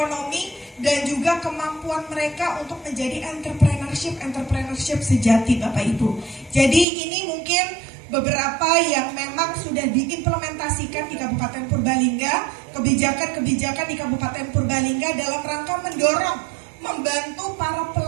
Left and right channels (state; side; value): drops out; left; at 6.9 s